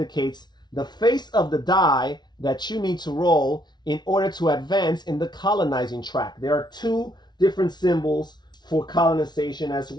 the face of the die that you need to roll in order to advance in the colonizing track. There are two different symbols for colonization as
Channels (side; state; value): right; late; 0.20 ms